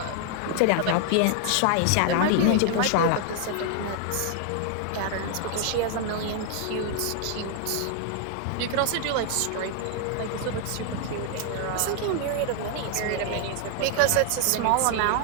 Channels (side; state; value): both; different; correlation 0.00